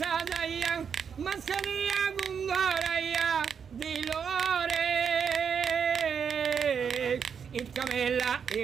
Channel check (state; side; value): quieter; left; 7.0 dB